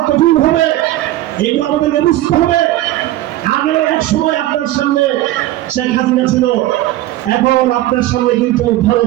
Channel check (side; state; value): left; quieter; 15.3 dB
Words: কঠিন হবে, এগুলো আমাদেরকে বুঝতে হবে। আগে এক সময় আপনার সামনে শেখ হাসিনা ছিল, এখন আপনার সামনে কিন্তু